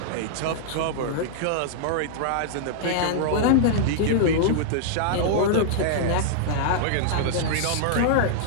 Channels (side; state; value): both; different; correlation -0.01